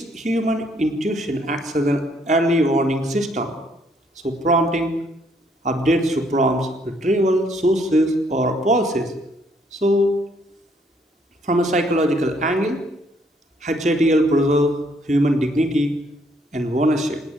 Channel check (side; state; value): both; normal; correlation 0.68